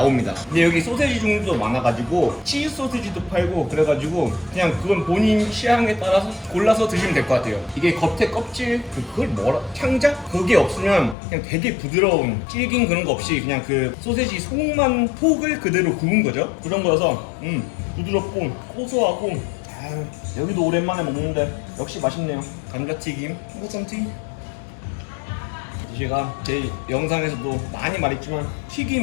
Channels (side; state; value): right; drops out; at 11.2 s